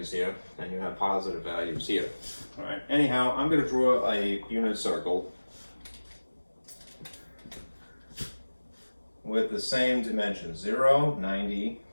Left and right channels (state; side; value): inverted; both; correlation -1.00